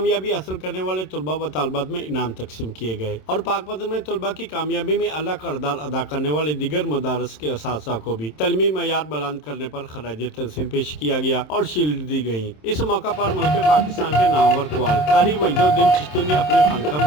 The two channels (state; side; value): late; right; 27 ms